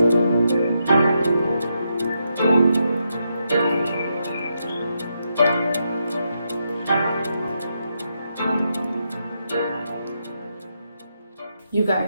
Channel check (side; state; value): both; inverted; correlation -0.82